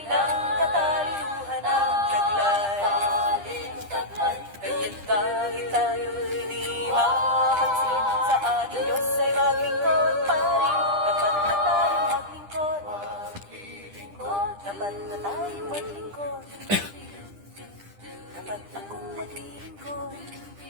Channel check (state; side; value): late; left; 10 ms